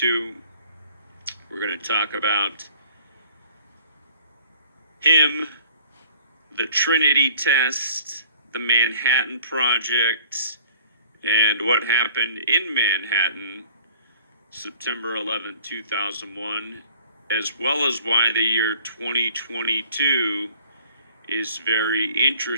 We're going to talk about him, the Trinity test, the Manhattan Project, and what happened in Manhattan September 11, 2001, as well as why the year 2022 is very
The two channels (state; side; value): inverted; both; correlation -0.51